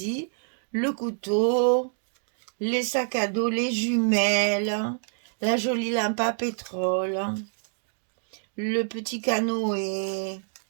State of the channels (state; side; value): silent; left; 57 dB below the other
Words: Le couteau, les sacs à dos, les jumelles, la jolie lampe à pétrole, le petit canoë,